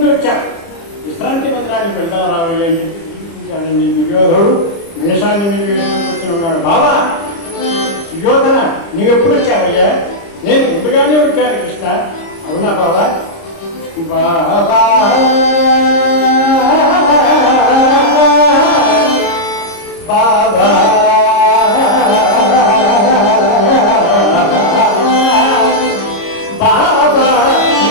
వచ్చాడు, విశ్రాంతి మందిరానికి వెళ్దాం రావయ్య అని చెప్పి దుర్యోధనుడు వేషాన్ని మీద వేసుకొచ్చి ఉన్నాడు. బావా సుయోధన నీవెప్పుడు వచ్చావయ్యా? నేను ముందుగానే వచ్చాను కృష్ణ. అవునా బావా? బాబా బాబా బాబా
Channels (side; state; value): right; late; 30 ms